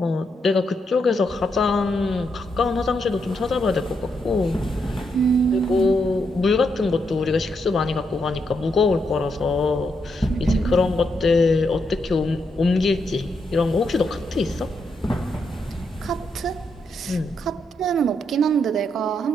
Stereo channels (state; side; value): normal; both; correlation 0.80